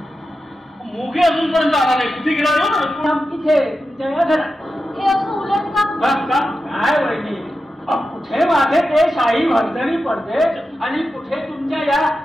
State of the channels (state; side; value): normal; both; correlation 0.91